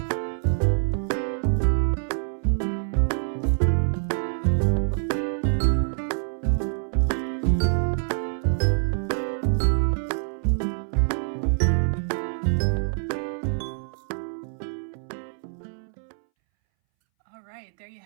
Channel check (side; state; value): left; silent; 61 dB below the other